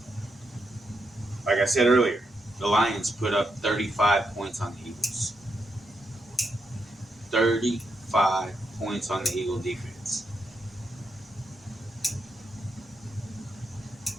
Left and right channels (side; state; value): both; normal; correlation 0.82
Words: like I said earlier, the Lions put up 35 points on the Eagles. 35 points on the Eagle defense.